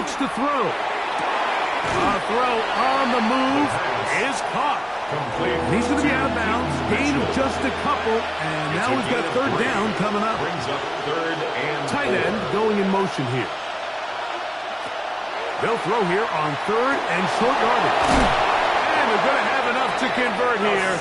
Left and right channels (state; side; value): identical; both; correlation 1.00